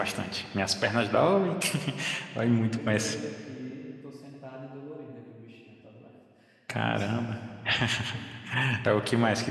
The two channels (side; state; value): both; identical; correlation 1.00